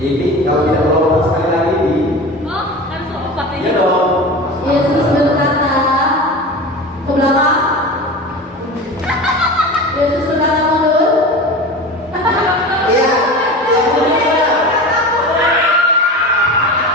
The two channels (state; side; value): normal; both; correlation 0.31